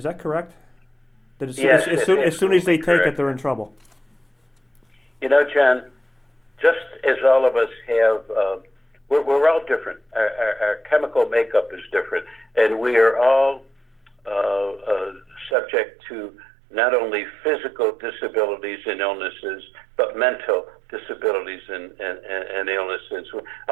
that correct? That as soon as they take it, they're in trouble. John, just as all of us have, we're all different. Our chemical makeup is different, and we are all subject to not only physical disabilities and illnesses, but mental disabilities and illnesses.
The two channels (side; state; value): left; drops out; at 15.6 s